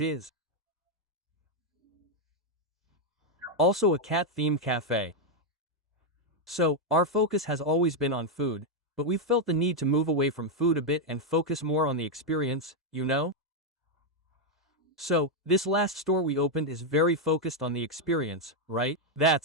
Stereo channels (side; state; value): both; normal; correlation 0.01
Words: also a cat-themed cafe. So, our focus has always been on food, but we've felt the need to move away from food a bit and focus more on the experience, you know? So, this last store we opened is very focused on the experience, right?